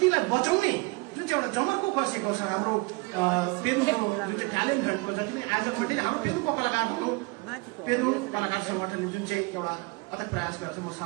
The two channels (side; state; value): left; quieter; 26.8 dB